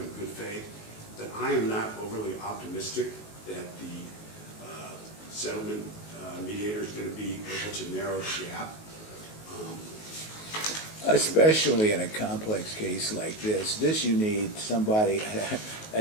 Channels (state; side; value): late; right; 19 ms